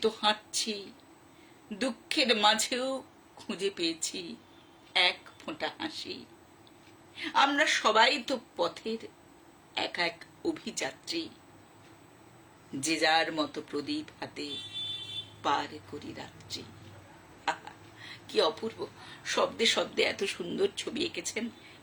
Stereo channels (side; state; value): both; identical; correlation 1.00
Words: তো হাঁটছি। দুঃখের মাঝেও খুঁজে পেয়েছি এক ফোঁটা হাসি। আমরা সবাই তো পথের এক এক অভিযাত্রী, যে যার মতো প্রদীপ হাতে পার করি রাত্রি। আহা, কি অপূর্ব! শব্দে শব্দে এত সুন্দর ছবি এঁকেছেন।